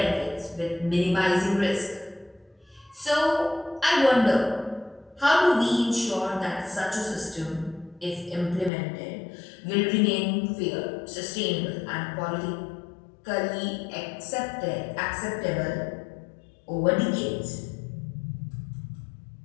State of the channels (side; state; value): right; drops out; at 8.7 s